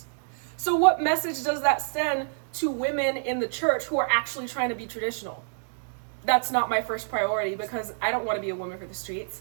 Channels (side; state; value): left; silent; digital silence